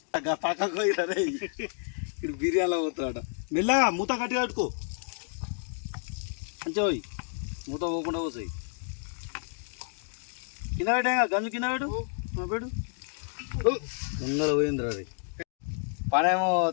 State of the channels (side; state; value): right; silent; 58 dB below the other